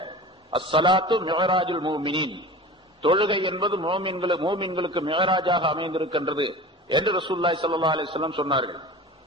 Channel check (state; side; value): normal; both; correlation 0.36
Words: அஸ்ஸலாத்து மிஅராஜுல் மூமினீன், தொழுகை என்பது மூமின்களுக்கு மிஅராஜாக அமைந்திருக்கின்றது என்று ரசூலுல்லாஹி ஸல்லல்லாஹு அலைஹி வஸல்லம் சொன்னார்கள்.